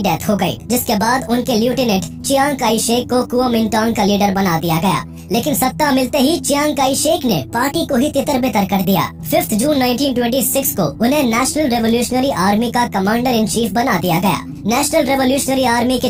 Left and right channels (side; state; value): both; identical; correlation 1.00